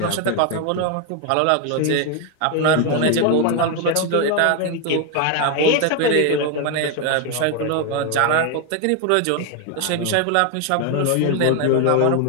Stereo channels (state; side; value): different; both; correlation 0.01